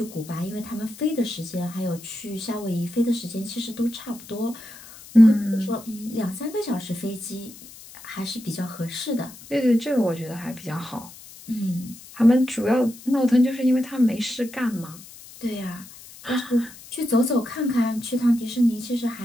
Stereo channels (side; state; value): left; noise; hiss, 18 dB below the sound